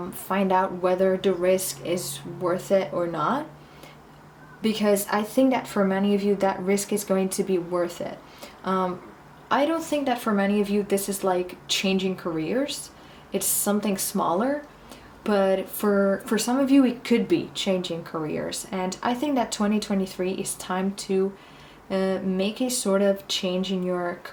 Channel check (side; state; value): both; identical; correlation 1.00